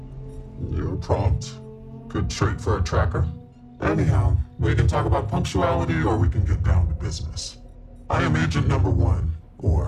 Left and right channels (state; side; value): identical; both; correlation 1.00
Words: You're prompt. Good trait for a tracker. Anyhow, we can talk about punctuality or we can get down to business. I am Agent Number 1,